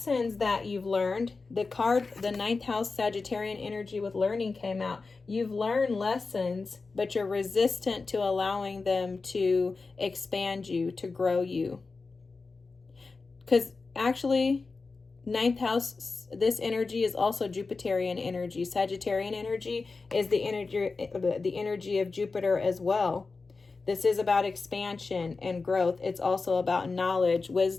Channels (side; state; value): right; quieter; 4.1 dB